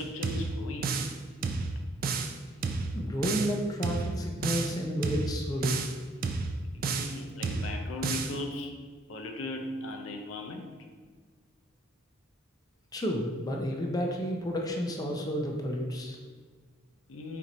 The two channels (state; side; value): normal; both; correlation 0.65